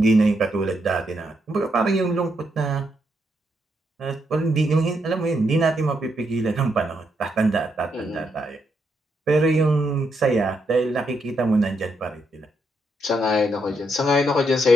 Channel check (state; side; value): normal; both; correlation 0.79